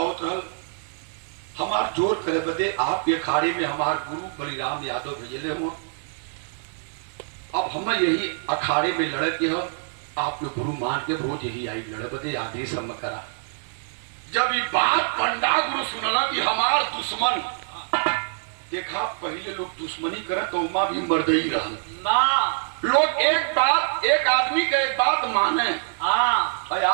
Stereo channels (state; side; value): silent; left; digital silence